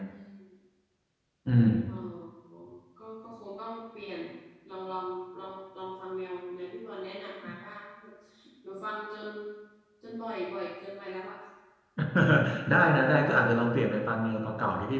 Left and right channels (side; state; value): both; identical; correlation 1.00